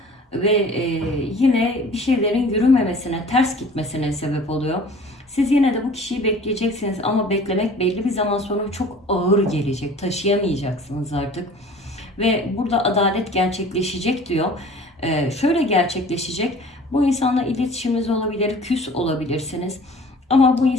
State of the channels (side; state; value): both; normal; correlation 0.46